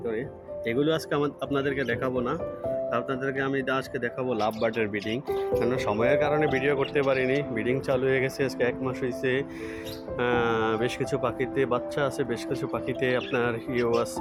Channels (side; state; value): both; identical; correlation 1.00